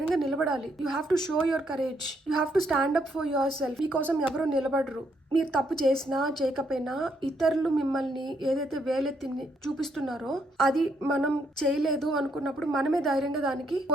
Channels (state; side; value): normal; both; correlation 0.73